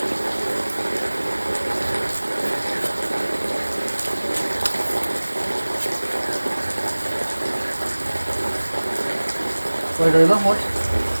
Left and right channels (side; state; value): both; inverted; correlation -1.00